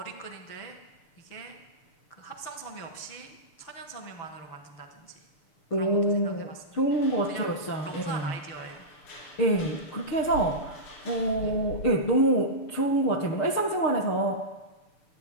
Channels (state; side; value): late; right; 6.7 ms